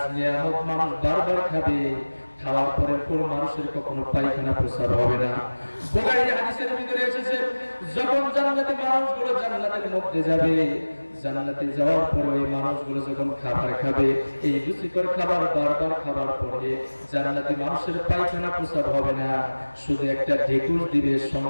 নিয়ামত মানুষ বারবার খাবে। খাওয়ার পরে কোন মানুষের কখনো পায়খানা প্রস্রাব হবে না। বুখারী হাদিসের ভিতরে এসেছে, যখন জান্নাতি মানুষগুলো জান্নাতের মধ্যে যাবে, জান্নাতে যাওয়ার পরে এই মানুষগুলো যখন খাবার খাবে, এই রুচিকর খাবার বারবার খাবার পরে জান্নাতি মানুষের পায়খানা প্রস্রাব হবে না, শুধু একটা ঢেকুর দিবে,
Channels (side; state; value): both; inverted; correlation -1.00